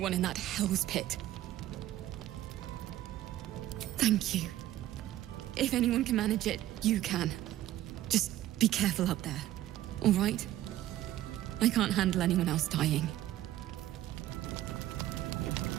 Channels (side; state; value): left; quieter; 13.8 dB